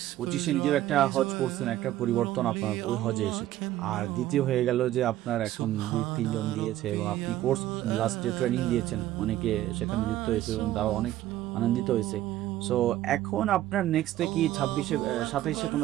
25-এ নিজের একটা হজ করছেন, একটা পরিবর্তন আপনার ওই হজে এসেছে, আর দ্বিতীয় হয়ে গেল যে আপনার এখন 2-3 জন দিয়েছে এবং আপনি কোর্স লাস্টে ট্রেনিং দিয়েছেন, অনেকে সেখানে যুক্ত হয়েছে এবং তারা অনেক আনন্দিত হয়েছে। সো এখন আপনার নেক্সটে কি 27-এ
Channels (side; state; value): left; quieter; 14.1 dB